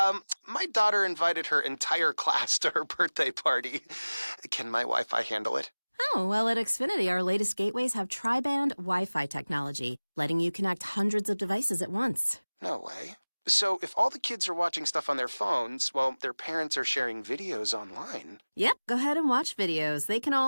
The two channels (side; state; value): both; inverted; correlation -1.00